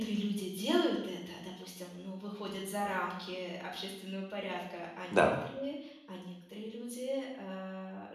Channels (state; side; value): identical; both; correlation 1.00